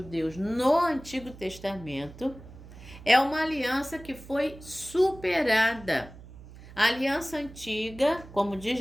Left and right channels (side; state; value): right; noise; hum, 18 dB below the sound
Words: no Antigo Testamento é uma aliança que foi superada. A aliança antiga, como diz